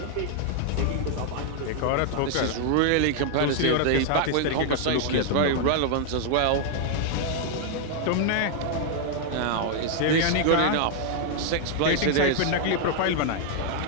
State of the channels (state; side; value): different; both; correlation 0.00